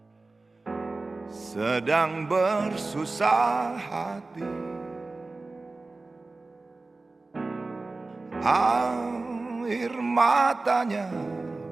sedang bersusah hati. Air matanya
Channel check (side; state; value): left; quieter; 3.4 dB